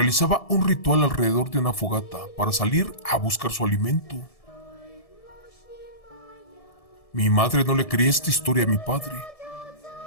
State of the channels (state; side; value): late; right; 1.7 ms